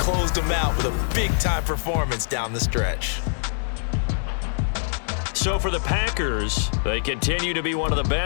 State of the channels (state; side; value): silent; right; digital silence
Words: them out with a big-time performance down the stretch. So for the Packers, they continue to be one of the